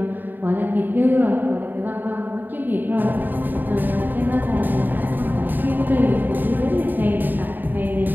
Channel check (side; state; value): left; late; 0.090 ms